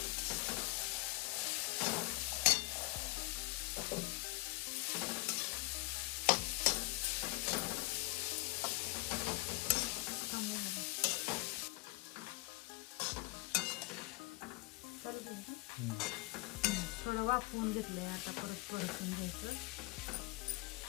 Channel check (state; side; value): quieter; right; 23.3 dB